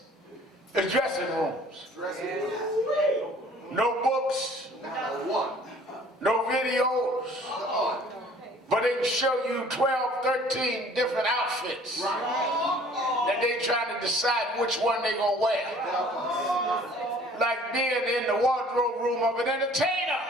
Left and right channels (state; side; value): normal; both; correlation 0.53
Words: and dressing rooms. No books, no videos, but But they can show you 12, 13 different outfits that they trying to decide which one they gonna wear. Like being in the wardrobe room of an entertainer.